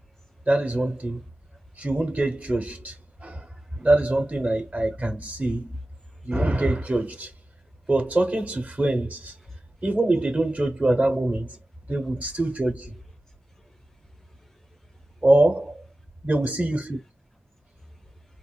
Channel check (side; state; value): both; normal; correlation 0.95